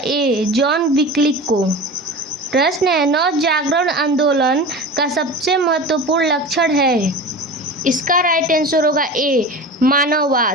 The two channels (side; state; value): both; normal; correlation 0.32